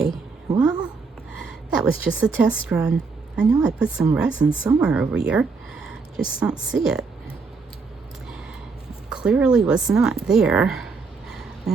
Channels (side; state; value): left; quieter; 4.5 dB